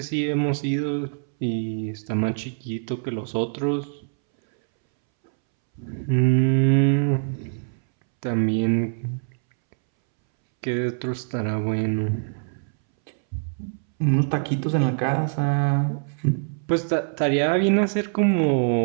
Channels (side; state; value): left; silent; 63 dB below the other